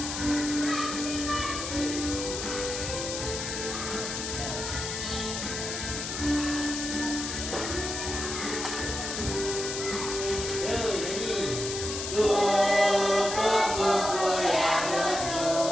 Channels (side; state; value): left; noise; hiss, 5 dB below the sound